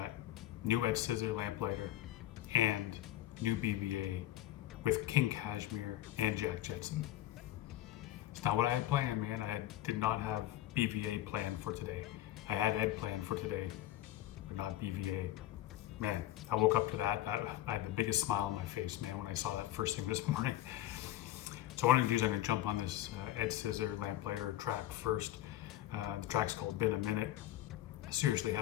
new Ed Scissor Lamplighter and new BVA with King Cashmere and Jack Jetson. It's not what I had planned, man. did not have BVA planned for today. I had Ed planned for today, but not BVA. Man, I woke up to that. I had the biggest smile on my face, man, when I saw that first thing this morning. So what I'm gonna do is I'm gonna jump on this Ed Scissor Lamplighter track first. The track's called Been a Minute. It seriously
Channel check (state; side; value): quieter; right; 14.4 dB